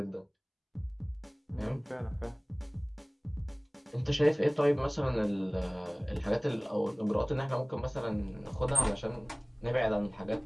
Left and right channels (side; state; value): both; identical; correlation 1.00